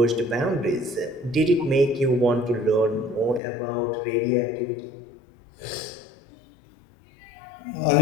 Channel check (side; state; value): right; drops out; at 3.4 s